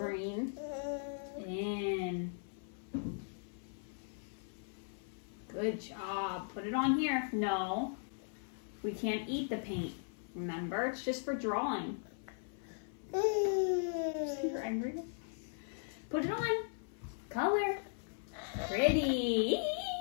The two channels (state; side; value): silent; right; 52 dB below the other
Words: In. Good job. Put it on here. No, we can't eat the paint. Remember, it's just for drawing. See, you're angry. Put it on. Color. Pretty.